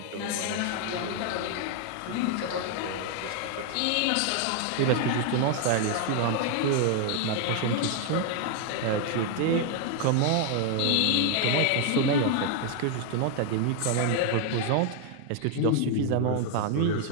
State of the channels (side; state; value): both; different; correlation 0.00